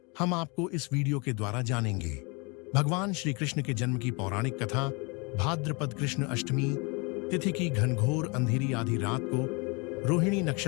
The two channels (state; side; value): quieter; right; 30.4 dB